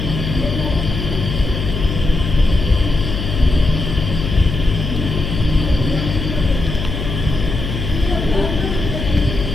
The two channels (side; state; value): left; noise; hum, 4 dB below the sound